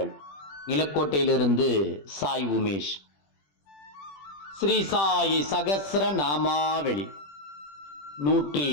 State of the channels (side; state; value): right; late; 20 ms